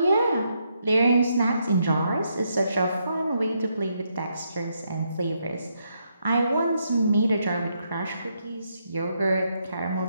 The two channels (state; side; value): inverted; both; correlation -0.78